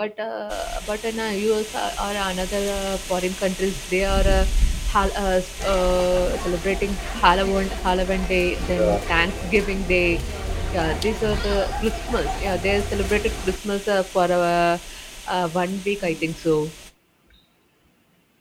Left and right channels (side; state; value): both; identical; correlation 1.00